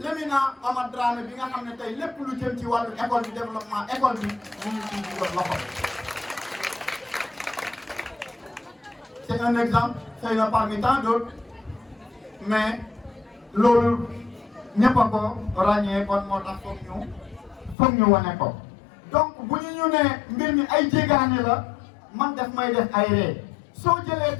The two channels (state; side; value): drops out; right; at 17.8 s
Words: Amath Dramé bi nga xam ne tey lépp lu jëm ci wàllu école bi développement école bi mu ngi ciy dugal loxo. C'est un exemple xëy na parmi tant d'autres mais loolu ñëpp a ko ràññee kon moo tax foog ñu wane ko. donc bu ñu ne mbir mi ay jéegaane la man def may def ay ree soo jëlee